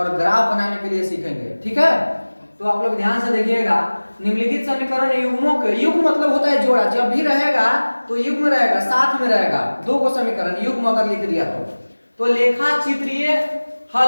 ग्राफ बनाने के लिए सीखेंगे, ठीक है। तो आप लोग ध्यान से देखिएगा, निम्नलिखित समीकरण युग्मों के, युग्म मतलब होता है जोड़ा, जब भी रहेगा तो युग्म रहेगा, साथ में रहेगा। दो को समीकरण युग्म अगर लिख दिया तो लेखा चित्रीय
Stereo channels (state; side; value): inverted; both; correlation -1.00